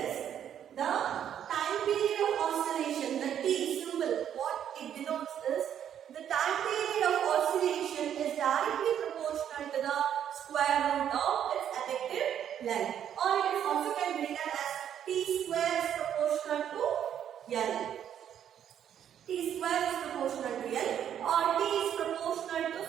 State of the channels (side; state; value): left; quieter; 9.6 dB